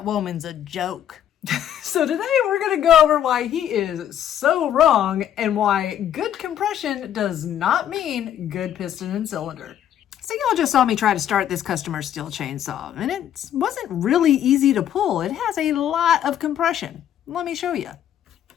woman's a joke. So today we're going to go over why he is so wrong and why good compression does not mean good piston and cylinder. So y'all just saw me try to start this customer steel chainsaw and it wasn't really easy to pull. It has a lot of compression. Let me show you.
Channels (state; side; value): quieter; right; 10.4 dB